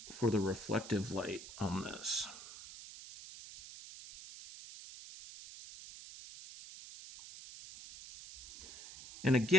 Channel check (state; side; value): noise; right; hiss, 13 dB below the sound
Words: for the reflective light on this. And